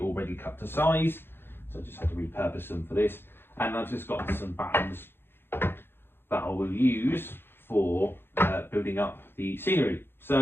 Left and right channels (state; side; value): late; right; 0.11 ms